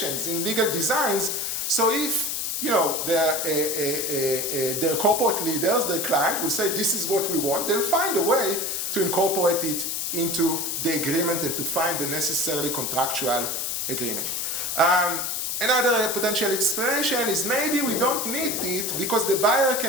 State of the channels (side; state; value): left; noise; hiss, 1 dB below the sound